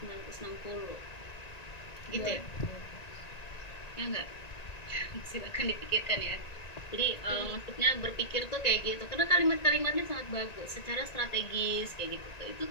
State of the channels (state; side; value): late; right; 1.9 ms